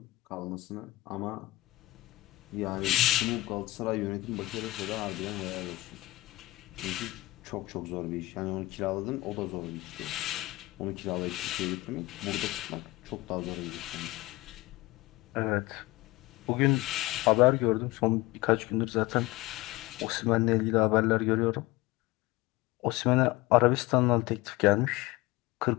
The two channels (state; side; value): quieter; right; 19.8 dB